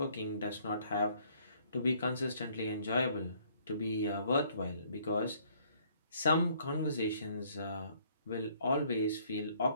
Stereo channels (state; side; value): inverted; both; correlation -0.63